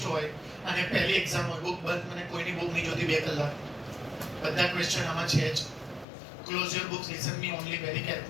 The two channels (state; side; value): drops out; right; at 6.1 s